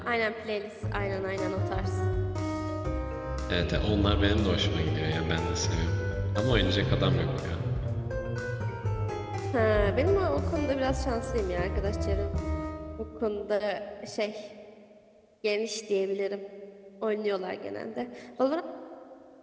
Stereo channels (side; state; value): both; identical; correlation 1.00